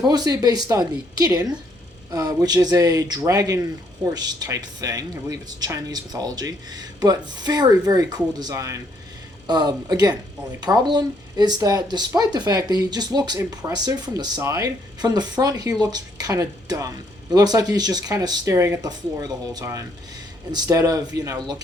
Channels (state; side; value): normal; both; correlation 0.70